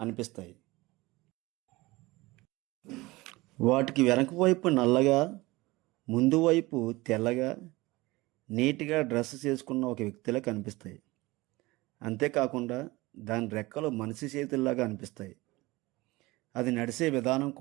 వాటికి వెనక వైపు నల్లగా, ముందు వైపు తెల్లగా, నీట్గా డ్రెస్ చేసుకున్న ఒక వ్యక్తిలా కనిపిస్తాయి. అంతేకాకుండా దాని రెక్కలు మనిషి చేతుల్లాగా అనిపిస్తాయి. అది నడిచే విధానం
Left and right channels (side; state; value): left; quieter; 21.1 dB